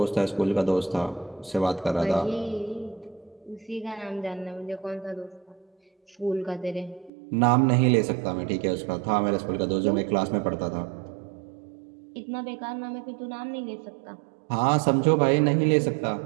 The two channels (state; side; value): drops out; left; at 7.1 s